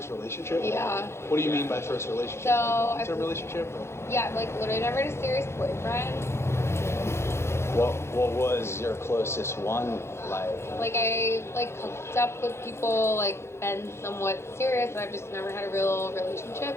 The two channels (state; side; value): late; right; 0.13 ms